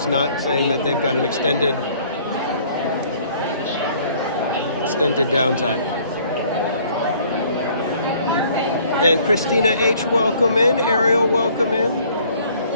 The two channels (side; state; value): both; inverted; correlation -0.57